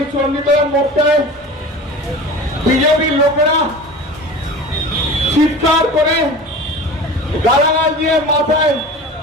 চণ্ডীতলার মোড়টায়। বিজেপির লোকেরা চিৎকার করে গালাগাল দিয়ে মাথায়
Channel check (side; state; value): both; normal; correlation 0.36